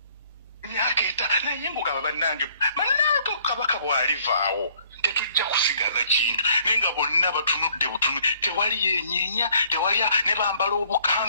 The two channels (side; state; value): both; inverted; correlation -0.61